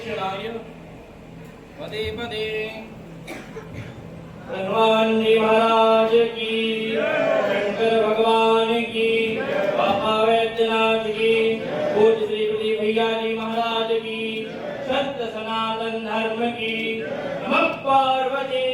पदे पदे हनुमान जी महाराज की शंकर भगवान की बाबा वैद्यनाथ की पूज्य श्री प्रदीप भैया जी महाराज की सत्य सनातन धर्म की नमः पार्वती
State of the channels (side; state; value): both; identical; correlation 1.00